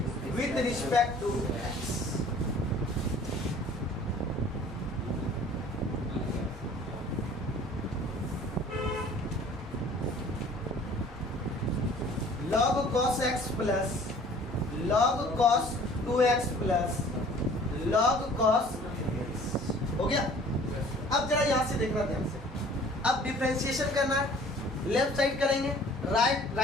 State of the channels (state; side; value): normal; both; correlation 0.51